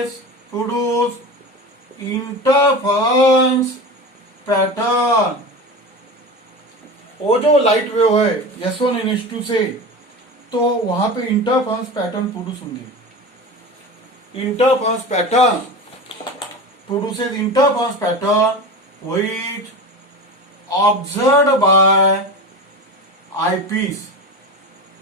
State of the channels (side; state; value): both; normal; correlation 0.29